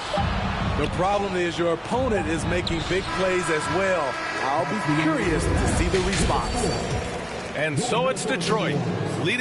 The problem is your opponent is making big plays as well. I'll be curious to see the response. And so it's Detroit,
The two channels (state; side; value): identical; both; correlation 1.00